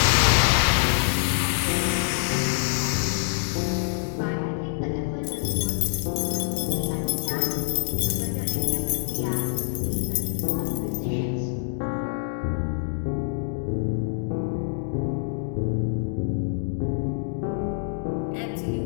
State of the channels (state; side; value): silent; right; digital silence